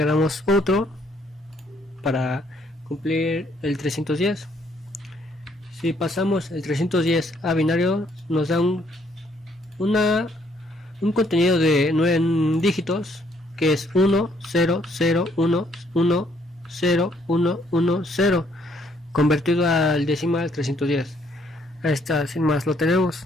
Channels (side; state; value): both; normal; correlation 0.68